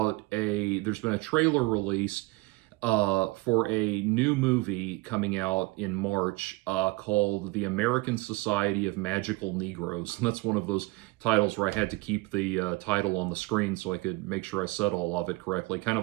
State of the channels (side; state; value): left; quieter; 22.6 dB